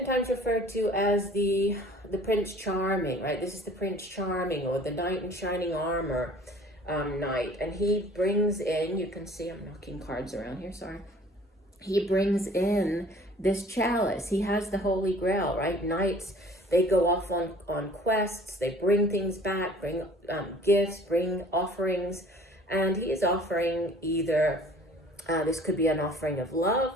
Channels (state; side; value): normal; both; correlation 0.51